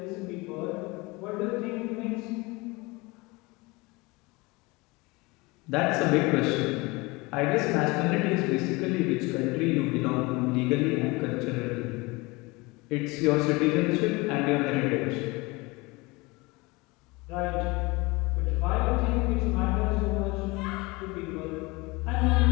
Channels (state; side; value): quieter; right; 24.4 dB